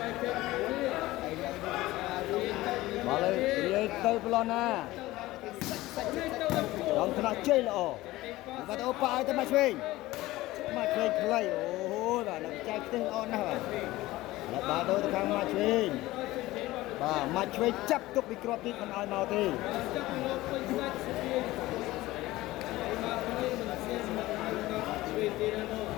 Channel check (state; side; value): quieter; right; 17.9 dB